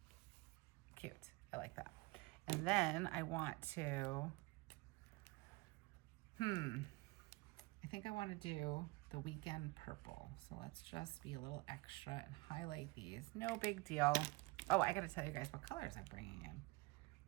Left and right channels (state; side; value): quieter; left; 24.9 dB